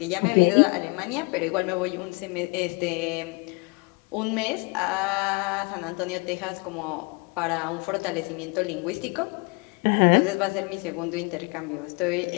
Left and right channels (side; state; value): right; quieter; 30.4 dB